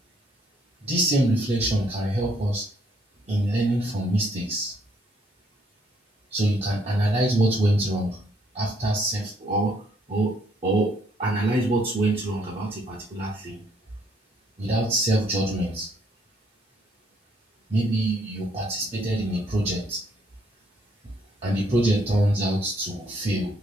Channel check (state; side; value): normal; both; correlation 0.68